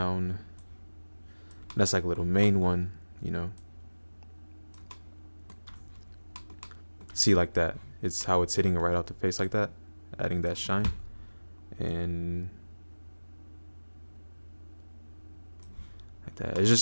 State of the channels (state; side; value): inverted; both; correlation -1.00